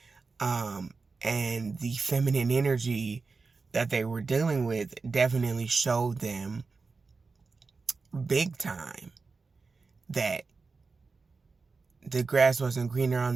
And the feminine energy that they were dealing with definitely showed them big time that the grass wasn't greener on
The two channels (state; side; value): quieter; left; 4.3 dB